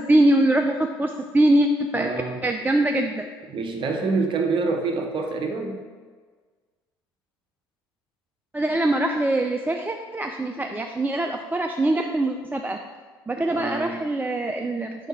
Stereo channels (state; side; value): normal; both; correlation 0.80